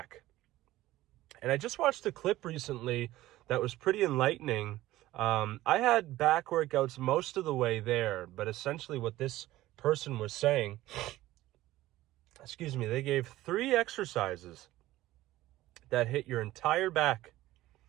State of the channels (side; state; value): left; quieter; 16.1 dB